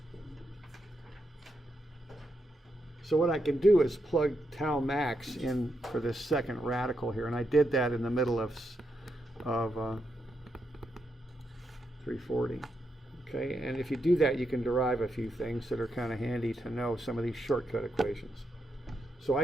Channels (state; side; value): normal; both; correlation 0.82